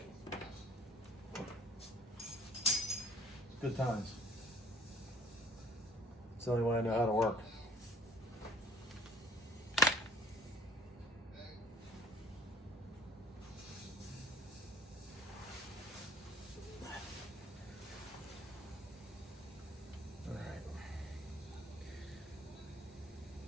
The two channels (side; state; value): both; normal; correlation 0.54